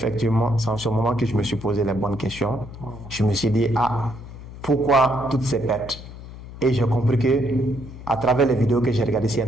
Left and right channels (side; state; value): left; noise; hum, 14 dB below the sound